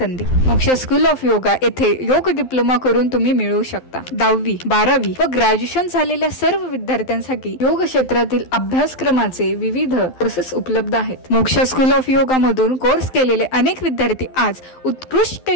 मोक्ष स्कूल ऑफ योगा येथे योग डिप्लोमा करून तुम्ही मिळवू शकता। 10वी, 12वी व ग्रॅज्युएशन झालेल्या सर्व विद्यार्थ्यांसाठी योग क्षेत्रातील अभ्यासक्रमाचे विविध कोर्सेस उपलब्ध आहेत। मोक्ष स्कूल ऑफ योगा मधून कोर्स केलेले अनेक विद्यार्थी आज उत्कृष्ट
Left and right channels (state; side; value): late; right; 12 ms